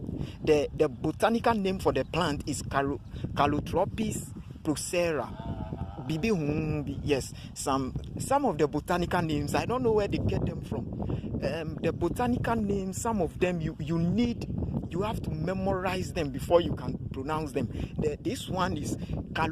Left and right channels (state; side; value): identical; both; correlation 1.00